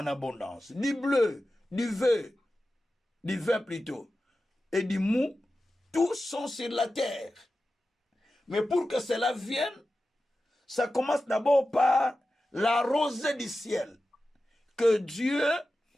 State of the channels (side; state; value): both; normal; correlation 0.93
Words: abondance. Du bleu, du vin plutôt, et du mou, tous sont sur la terre. Mais pour que cela vienne, ça commence d'abord par la rosée du ciel. Que Dieu